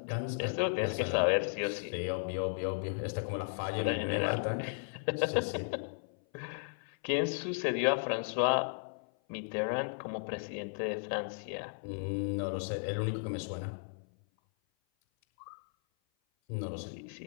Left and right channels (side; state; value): right; silent; 55 dB below the other